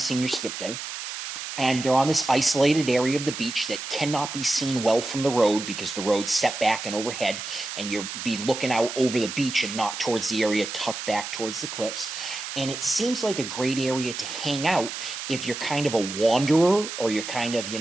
senior skip day. And they're on this isolated area of the beach that cannot be seen well from the road because the road's set back and overhead, and you'll be looking out over the beach and not towards the area tucked back towards the cliffs. And it seems like a great area to hang out if you're kind of a wanderer, or you're kind of,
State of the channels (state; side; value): noise; right; hiss, 7 dB below the sound